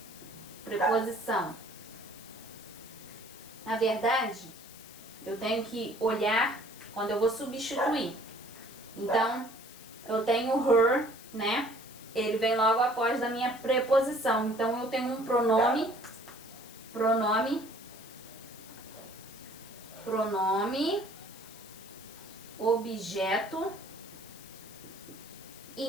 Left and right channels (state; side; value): noise; left; hiss, 18 dB below the sound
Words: Preposição. Na verdade, eu tenho que olhar quando eu vou substituir. Então, eu tenho her, né? Ele vem logo após da minha preposição. Então, eu tenho um pronome, objeto